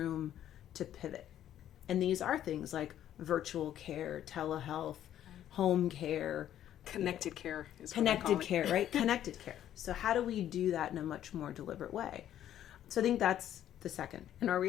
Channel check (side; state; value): right; quieter; 11.3 dB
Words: to pivot. And these are things like virtual care, telehealth, home care. Connected care is what Connected care, right? Connected care. So how do we do that in a much more deliberate way? So I think that's the second. And our